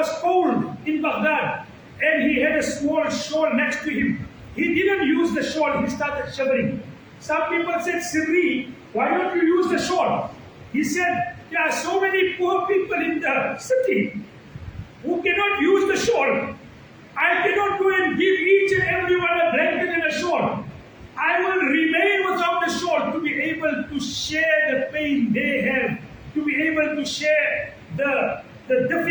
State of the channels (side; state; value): both; identical; correlation 1.00